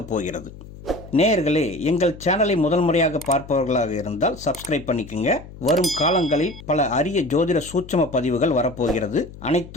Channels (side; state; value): left; noise; hum, 16 dB below the sound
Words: போகிறது. நேயர்களே, எங்கள் சேனலை முதல் முறையாக பார்ப்பவர்களாக இருந்தால் சப்ஸ்கிரைப் பண்ணிக்கோங்க. வரும் காலங்களில் பல அரிய ஜோதிட சூட்சம பதிவுகள் வரப்போகிறது.